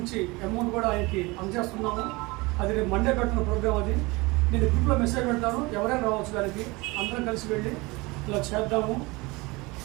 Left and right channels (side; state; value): left; quieter; 23.9 dB